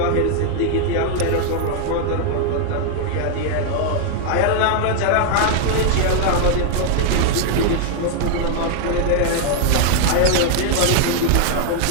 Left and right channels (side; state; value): both; different; correlation 0.00